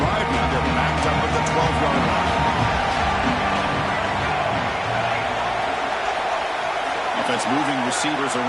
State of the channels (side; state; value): both; identical; correlation 1.00